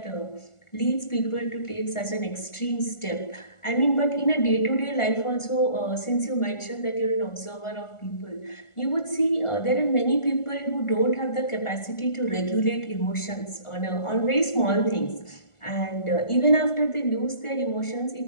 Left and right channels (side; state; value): right; late; 1.4 ms